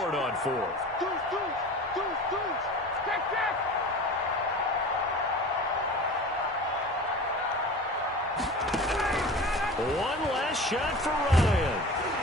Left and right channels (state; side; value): normal; both; correlation 0.36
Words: it on 4th. One last shot for Ryan.